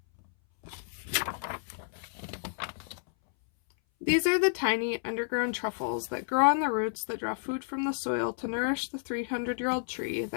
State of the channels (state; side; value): silent; right; 57 dB below the other